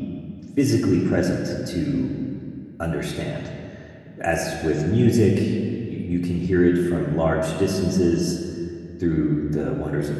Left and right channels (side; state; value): both; identical; correlation 1.00